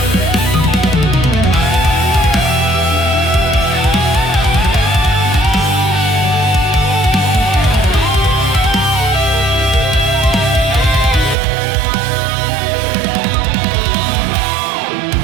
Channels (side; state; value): left; drops out; at 11.4 s